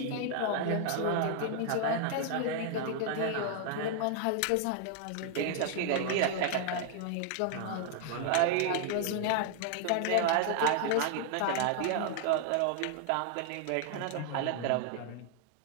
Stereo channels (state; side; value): different; both; correlation 0.00